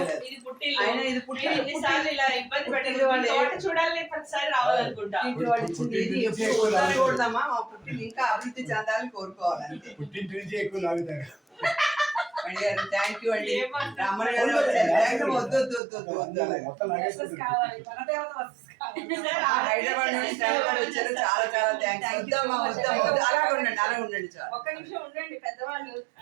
చూడదామా మా పుట్టిన ఇంకా అభివృద్ధి చెందాలని కోరుకోవాలంటే. థ్యాంక్ యూ అండి. రామన్ గారు హైదరాబాద్ నుండి వచ్చారు, చాలా చాలా థ్యాంక్స్. వద్దమ్మా వద్దమ్మా, అలాగే ఉండండి అలాగే ఉండండి సార్. ఒక్క నిమిషం ఉండండి పెద్దవాళ్ళు.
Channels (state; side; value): drops out; left; at 15.8 s